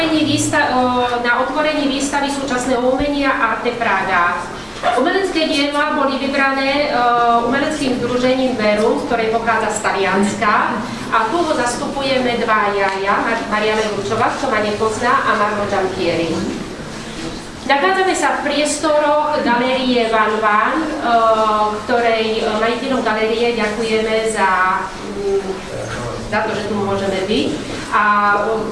výstavy súčasného umenia Arte Praha. Umelecké diela boli vybrané umeleckým združením Verum, ktoré pochádza z Talianska. A tu ho zastupujeme dvaja, Mariana Ručová, kto ma nepozná, a Marmo Giampieri. Nachádzame Nachádzame sa v priestoroch galérie Van Van, ktorej majiteľom galérie ďakujeme za to, že tu môžeme byť. A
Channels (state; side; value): identical; both; correlation 1.00